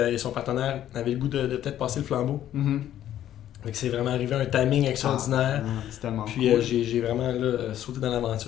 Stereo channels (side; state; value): right; quieter; 11.7 dB